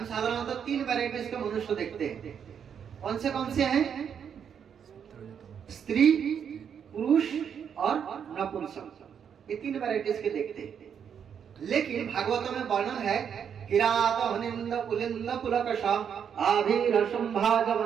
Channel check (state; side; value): quieter; left; 7.8 dB